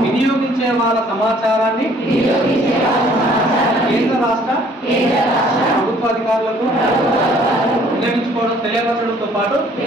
వినియోగించే వాళ్ళ సమాచారాన్ని కేంద్ర రాష్ట్ర ప్రభుత్వ అధికారులకు వినియోగించుకోవడం తెలియపరచడంతో పాటు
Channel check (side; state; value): both; normal; correlation 0.58